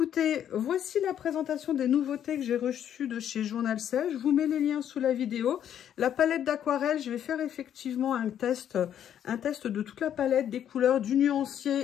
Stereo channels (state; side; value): quieter; right; 9.9 dB